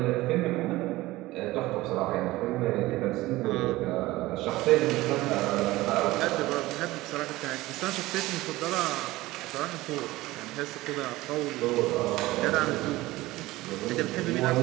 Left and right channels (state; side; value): quieter; left; 18.5 dB